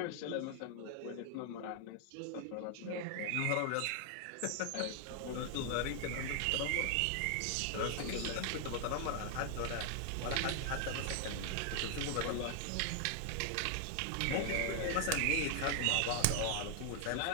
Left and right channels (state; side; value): different; both; correlation 0.00